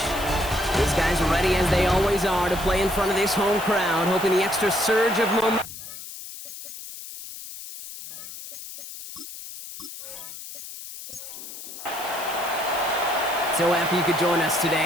These guys are ready, as they always are, to play in front of this home crowd, hoping the extra surge of momentum. So happy you could join us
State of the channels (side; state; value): left; noise; hiss, 12 dB below the sound